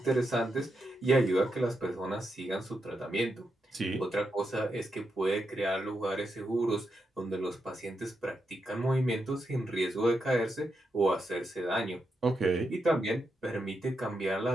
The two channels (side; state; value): both; normal; correlation 0.84